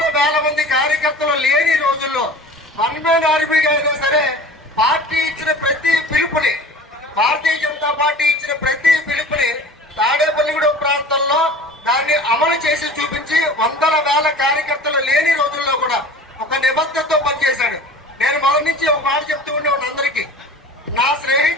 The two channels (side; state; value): both; normal; correlation 0.41